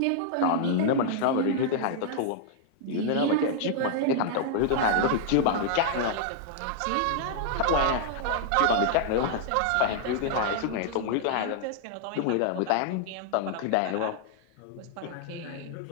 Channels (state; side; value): different; both; correlation -0.01